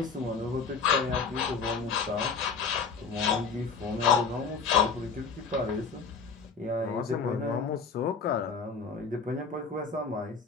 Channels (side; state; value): right; quieter; 5.3 dB